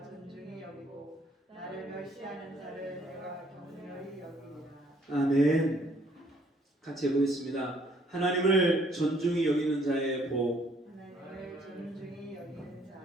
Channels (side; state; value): both; normal; correlation 0.64